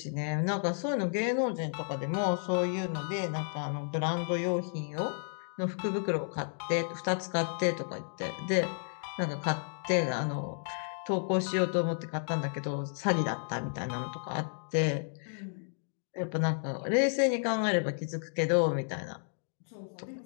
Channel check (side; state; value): right; silent; digital silence